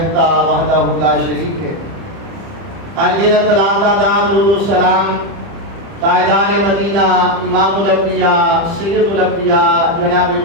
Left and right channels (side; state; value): left; late; 30 ms